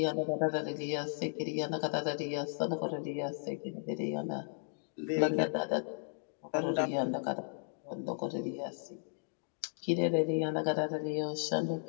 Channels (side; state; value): right; silent; digital silence